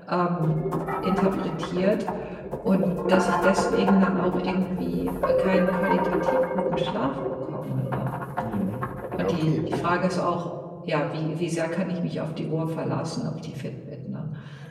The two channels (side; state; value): both; identical; correlation 1.00